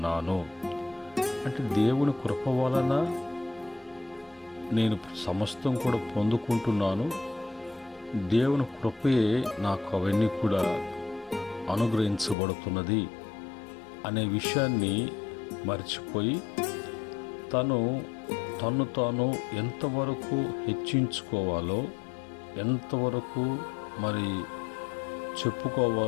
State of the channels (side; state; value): right; drops out; at 12.4 s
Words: అంటే దేవుని కృప వలన నేను సమస్తం కూడా పొందుకుంటున్నాను. దేవుని కృపయే నాకు అవన్నీ కూడా అనుగ్రహించబడుతున్నది అనే విషయాన్ని మర్చిపోయి తన్ను తాను ఎంతవరకు హెచ్చించుకోవాలో, ఎంతవరకు మరి